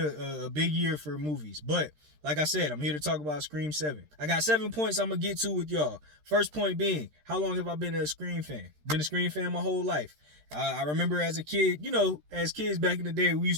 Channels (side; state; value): left; late; 13 ms